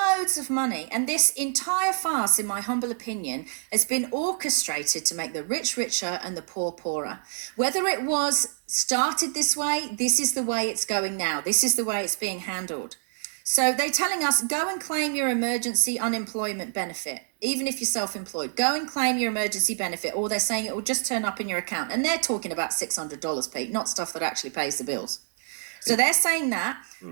of money, and this entire farce, in my humble opinion, has been orchestrated to make the rich richer and the poor poorer. Whether it was started this way, this is the way it's going now. This is the way it's being handled. So they're telling us, go and claim your emergency unemployment benefit, even if you're self-employed. Go and claim your emergency benefit, or they're saying it will just turn up in your account. And they're talking about $600, Pete, not stuff that actually pays the bills. So they're saying that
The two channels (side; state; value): left; silent; digital silence